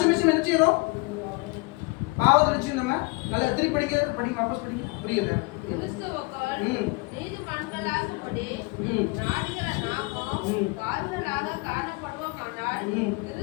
என்ன செய்யறோம்? பாவத்தை நினைச்சு நம்ம நல்லா திருப்பி படிங்க வாபஸ் படிங்க. புரியல.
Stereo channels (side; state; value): right; quieter; 27.3 dB